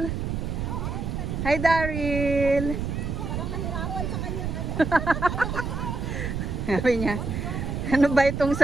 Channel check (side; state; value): right; noise; rumble, 3 dB below the sound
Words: Hi, Daryl. Parang nahirapan sa kanyang Sabi niya, ano ba itong